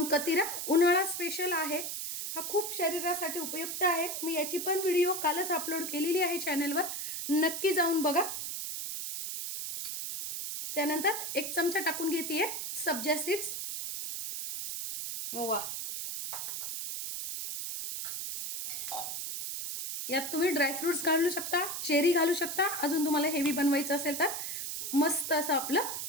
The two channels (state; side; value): noise; right; hiss, 4 dB below the sound